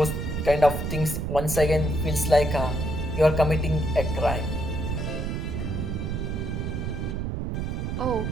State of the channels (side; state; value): right; noise; rumble, 2 dB below the sound